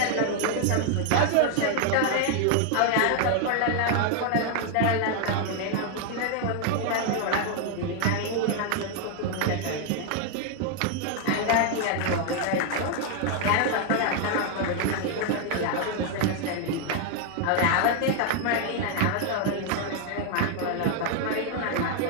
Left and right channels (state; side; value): different; both; correlation 0.00